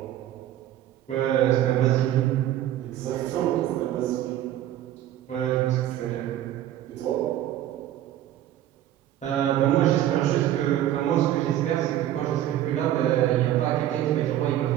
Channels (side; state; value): left; quieter; 12.5 dB